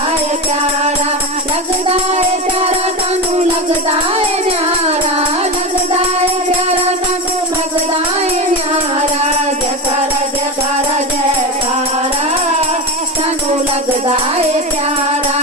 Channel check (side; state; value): both; normal; correlation 0.21